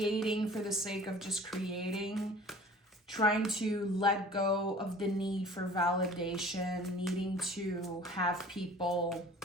for the sake of just creating, trying to let go of the need for validation, needing to have people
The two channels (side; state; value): both; normal; correlation 0.46